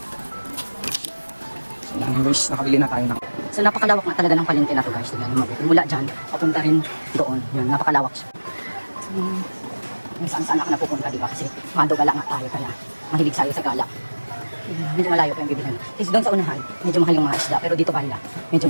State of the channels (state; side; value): inverted; both; correlation -1.00